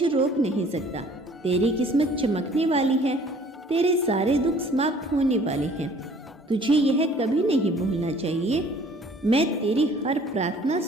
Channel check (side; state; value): both; normal; correlation 0.54